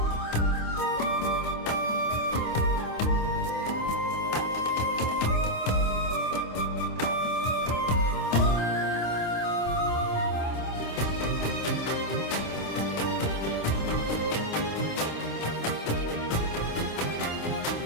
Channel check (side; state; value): right; late; 26 ms